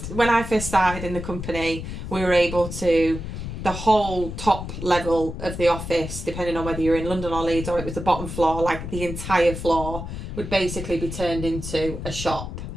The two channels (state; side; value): noise; left; rumble, 7 dB below the sound